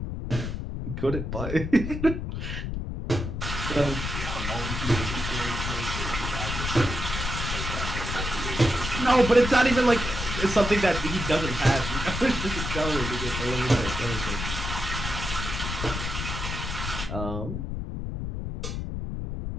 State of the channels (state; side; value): noise; left; rumble, 4 dB below the sound